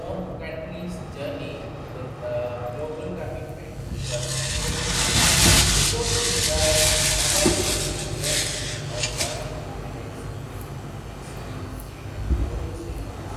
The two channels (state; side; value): identical; both; correlation 1.00